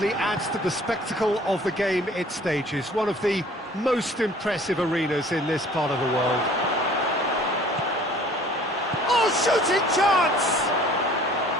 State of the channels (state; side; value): normal; both; correlation 0.52